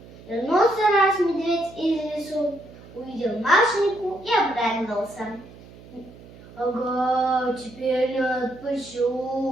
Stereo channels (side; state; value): right; noise; hum, 20 dB below the sound